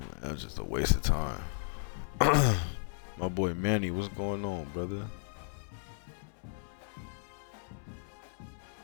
that was just a waste of time. My boy Manny, what's going on, brother?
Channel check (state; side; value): silent; right; 55 dB below the other